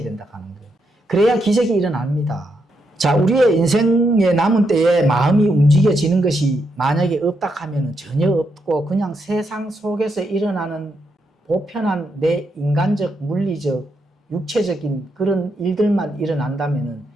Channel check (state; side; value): normal; both; correlation 0.81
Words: 된다 하는 거예요. 그래야 기적이 일어납니다. 자, 우리의 인생의 남은 때에 마음이 움직여지는 것이 만약에 없다 하면 전혀 없고 그냥 세상 속에서 일어나는 보편한 내 인간적, 물리적, 육체적인 그런 일들만 일어난다면은